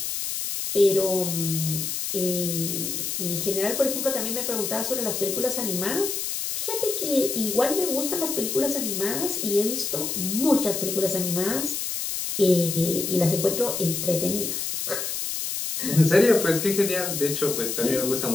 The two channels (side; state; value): left; noise; hiss, 3 dB below the sound